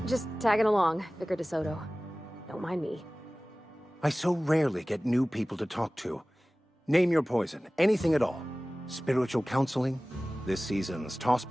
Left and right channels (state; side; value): normal; both; correlation 0.98